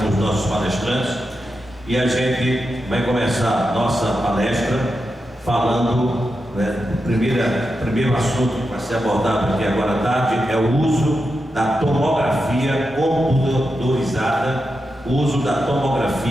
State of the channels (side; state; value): both; normal; correlation 0.88